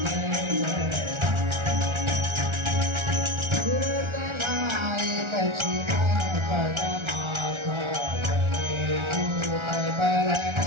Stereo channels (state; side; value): late; left; 1.4 ms